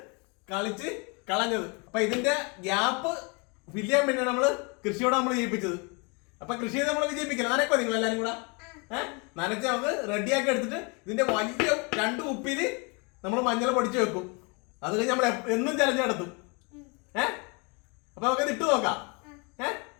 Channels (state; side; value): quieter; right; 31.7 dB